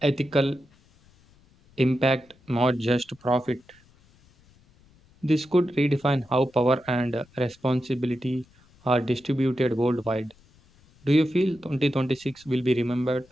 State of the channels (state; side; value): noise; left; rumble, 30 dB below the sound